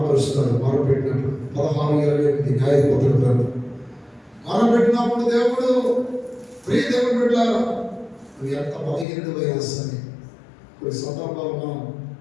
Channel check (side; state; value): right; drops out; at 9.1 s